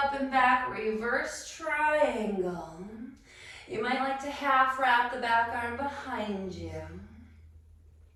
up and back, reverse triangle. You might like to half wrap the back arm behind you.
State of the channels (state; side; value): identical; both; correlation 1.00